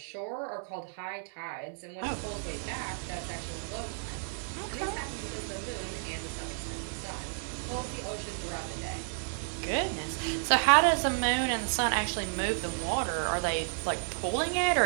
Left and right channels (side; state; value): left; silent; 56 dB below the other